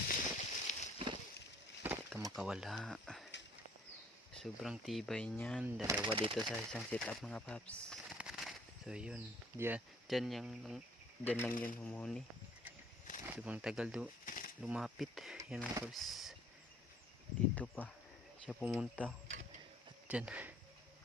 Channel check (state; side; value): normal; both; correlation 0.57